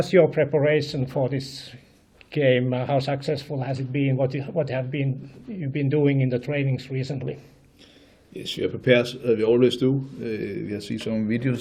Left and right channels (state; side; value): identical; both; correlation 1.00